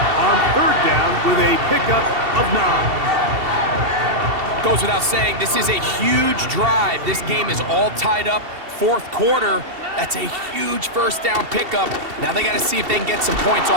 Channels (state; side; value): late; left; 2.7 ms